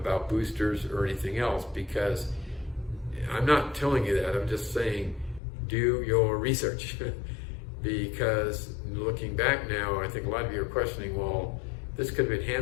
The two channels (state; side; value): drops out; right; at 5.4 s